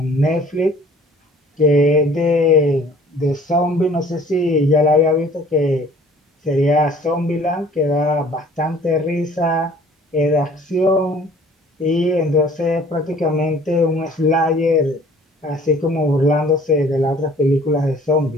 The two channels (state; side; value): normal; both; correlation 0.52